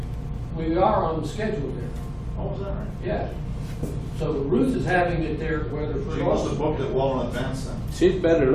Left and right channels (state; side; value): identical; both; correlation 1.00